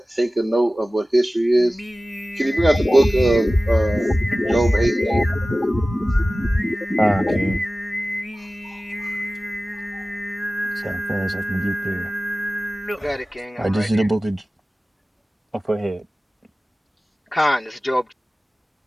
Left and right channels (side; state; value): both; normal; correlation 0.96